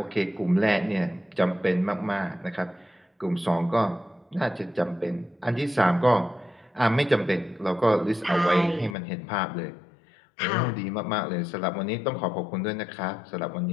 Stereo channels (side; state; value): right; drops out; at 9.0 s